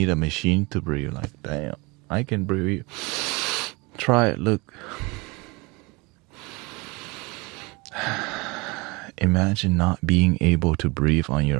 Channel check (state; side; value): quieter; left; 26.6 dB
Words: a machine to breathe. Like, damn, I can breathe. Try it, look. Imagine not being able to breathe on